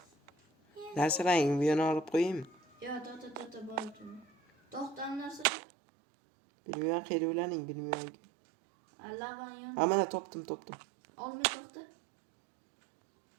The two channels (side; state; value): left; drops out; at 5.5 s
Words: Narsalarni bu yana olib qo'yaymi? Yo, boraman. To'xtan narsa. Bilmayman, qayerda ularning, bilmayman. Alavan yon. Ha, mana topdim. Olmay to'xta.